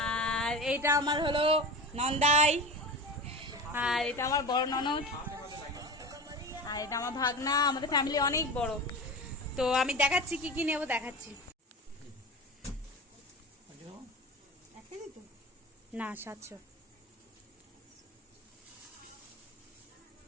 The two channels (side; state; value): both; normal; correlation 0.30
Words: আর এইটা আমার হলো নন্দাই, আর এটা আমার বড় ননদ, আর এটা আমার ভাগনা। আমাদের ফ্যামিলি অনেক বড়। তো আমি দেখাচ্ছি কি কি নেবো, দেখাচ্ছি। না 700।